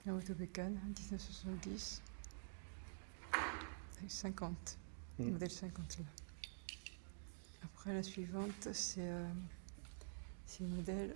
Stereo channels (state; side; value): silent; left; digital silence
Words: La moto bécane, 1970. Avec 50. Modèle 50 là. Après la suivante, c'est le modèle